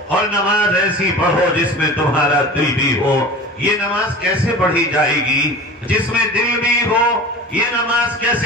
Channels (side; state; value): both; normal; correlation 0.36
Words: اور نماز ایسی پڑھو جس میں تمہارا دل بھی ہو. یہ نماز کیسے پڑھی جائے گی جس میں دل بھی ہو؟ یہ نماز